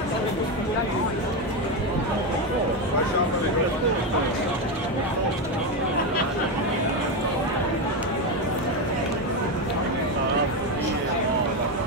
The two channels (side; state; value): both; normal; correlation 0.11